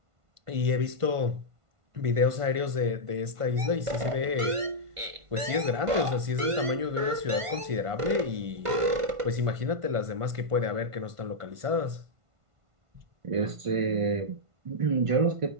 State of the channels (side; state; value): left; late; 1.5 ms